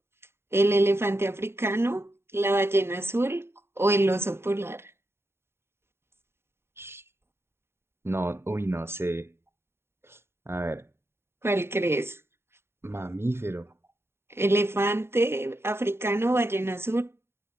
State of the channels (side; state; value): left; late; 0.12 ms